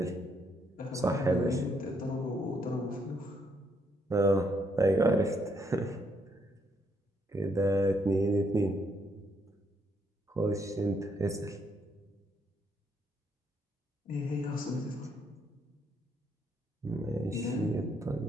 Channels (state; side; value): normal; both; correlation 0.73